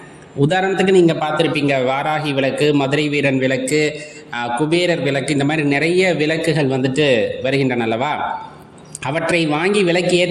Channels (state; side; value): identical; both; correlation 1.00